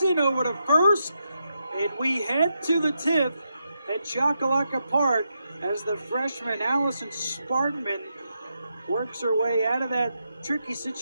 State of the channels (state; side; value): inverted; both; correlation -0.84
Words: over to first. And we head to the 10th at Chocolaca Park as the freshman Allison Spartman works her way out of that tricky